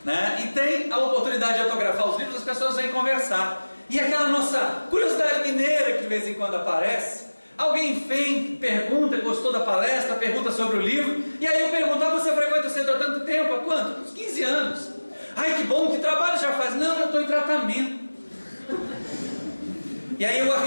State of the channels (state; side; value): inverted; both; correlation -1.00